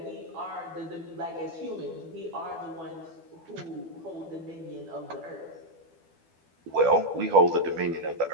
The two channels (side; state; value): left; late; 12 ms